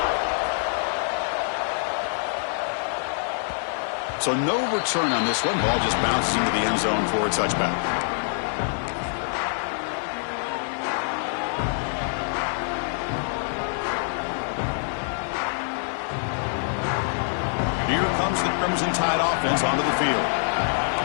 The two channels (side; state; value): right; silent; digital silence